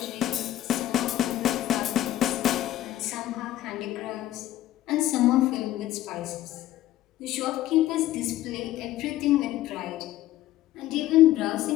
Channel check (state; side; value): quieter; right; 14.3 dB